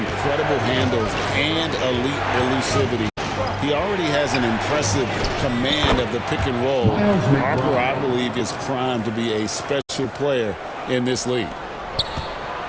handles and elite elusivity. He already has an impressive command of the pick and roll. Harper, I believe, is primed to be a special player in this league.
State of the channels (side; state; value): both; identical; correlation 1.00